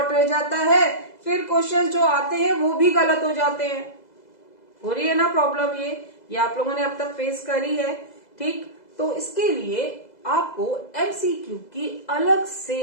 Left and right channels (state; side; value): late; right; 2.0 ms